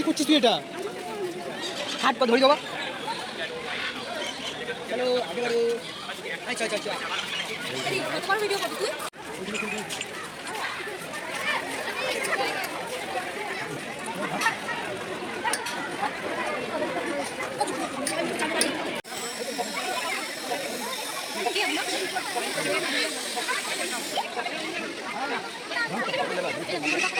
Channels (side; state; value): both; identical; correlation 1.00